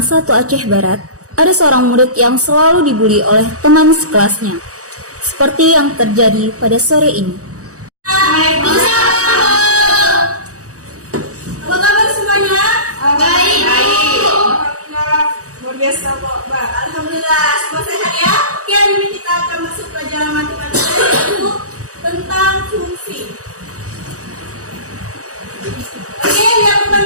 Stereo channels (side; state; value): left; late; 0.66 ms